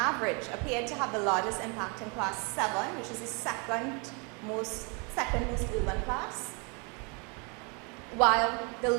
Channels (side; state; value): left; quieter; 32.9 dB